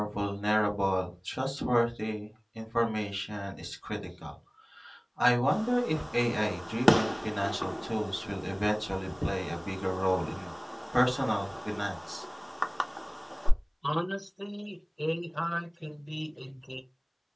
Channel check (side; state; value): both; identical; correlation 1.00